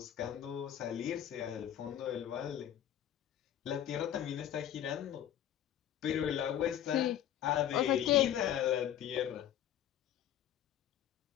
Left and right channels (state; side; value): quieter; right; 10.9 dB